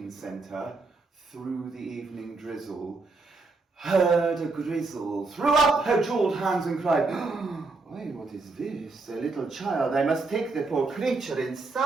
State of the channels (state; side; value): quieter; left; 3.7 dB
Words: centre through the evening drizzle, heard a grizzle, threw up her jewelled hands and cried, "Why, what is this? A little child. I must take the poor creature